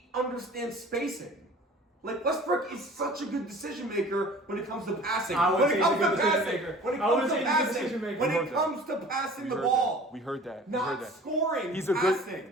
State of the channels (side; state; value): both; normal; correlation 0.45